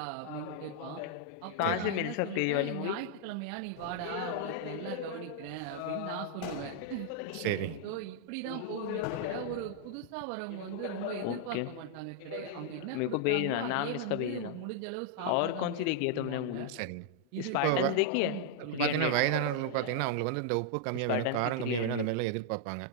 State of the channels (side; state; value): both; different; correlation -0.01